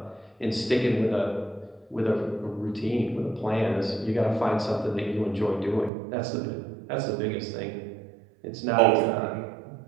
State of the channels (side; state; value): left; drops out; at 5.9 s